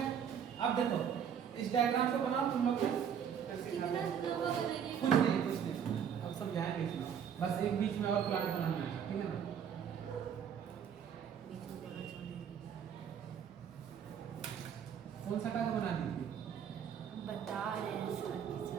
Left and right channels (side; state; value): left; quieter; 8.1 dB